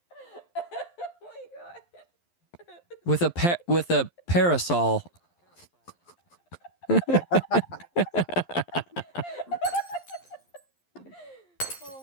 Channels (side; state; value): right; late; 11 ms